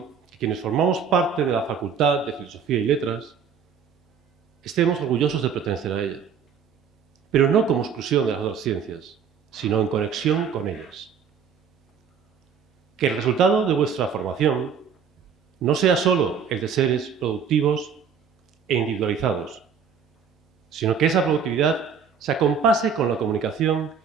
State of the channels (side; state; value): left; quieter; 6.7 dB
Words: que quienes formamos parte de la Facultad de Filosofía y Letras estemos orgullosos de pertenecer a ella, pero no como exclusión de las otras ciencias, sino en conexión con ellas. Que el resultado de vuestra formación no sea solo el de seres productivos e individualizados, sino que esa productividad se acompase con la comunicación